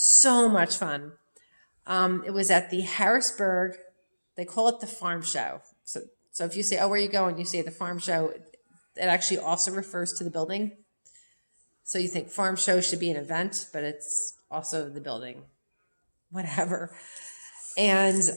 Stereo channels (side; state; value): both; inverted; correlation -1.00